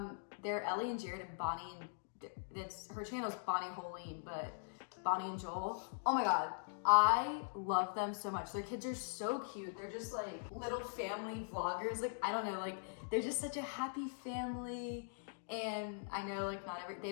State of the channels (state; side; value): silent; right; digital silence